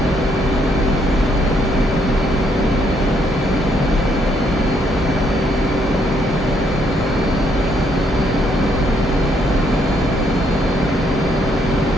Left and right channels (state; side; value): normal; both; correlation 0.71